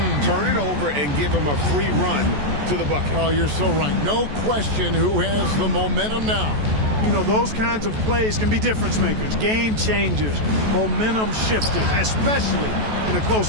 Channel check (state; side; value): late; left; 14 ms